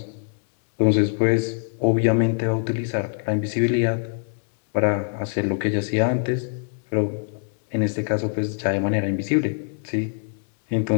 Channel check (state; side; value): silent; right; digital silence